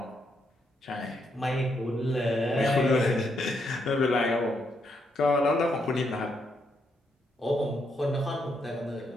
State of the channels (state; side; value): normal; both; correlation 0.78